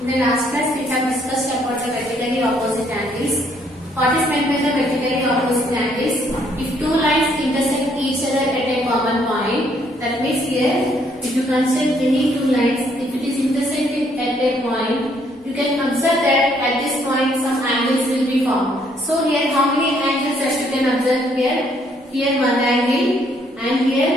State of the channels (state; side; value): normal; both; correlation 0.68